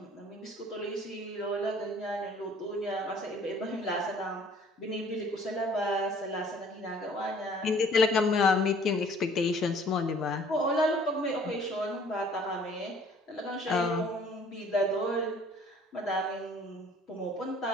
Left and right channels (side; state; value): both; normal; correlation 0.55